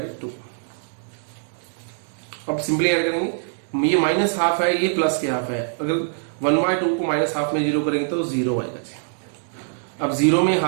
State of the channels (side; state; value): left; silent; digital silence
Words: अब सिंपली ऐड करेंगे, ये -½ है, ये प्लस के हाफ है, अगर 1/2 को -½ में 0 करेंगे तो 0 आएगा जी। अब 0 में